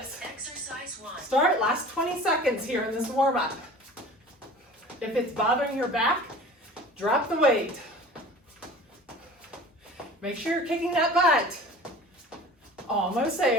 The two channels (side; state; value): both; normal; correlation 0.43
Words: Exercise 1. Start, last 20 seconds here in this warm up. If it's bothering your back, drop the weight. Make sure you're kicking that butt. Almost